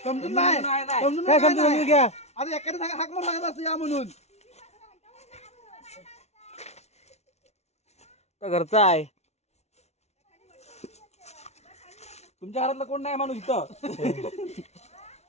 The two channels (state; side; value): late; right; 0.31 ms